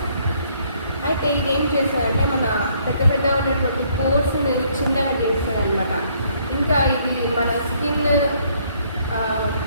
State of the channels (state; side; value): inverted; both; correlation -0.66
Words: అయితే ఇది ఏం చేస్తుందంటే మన పెద్ద ఉన్నటువంటి పోర్స్ని చిన్నగా చేస్తుంది అనమాట. ఇంకా ఇది మన స్కిన్